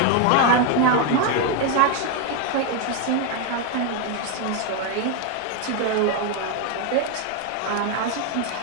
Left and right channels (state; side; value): different; both; correlation 0.01